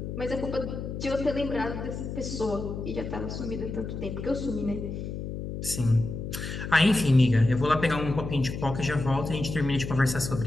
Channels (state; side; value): noise; left; hum, 6 dB below the sound